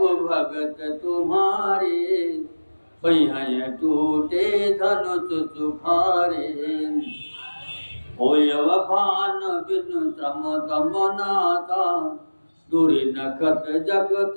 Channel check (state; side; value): inverted; both; correlation -1.00